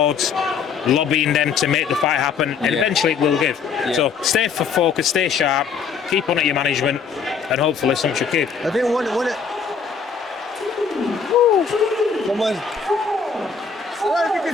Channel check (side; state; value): right; quieter; 5.9 dB